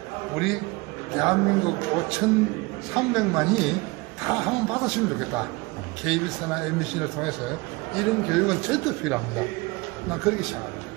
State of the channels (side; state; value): left; quieter; 24.2 dB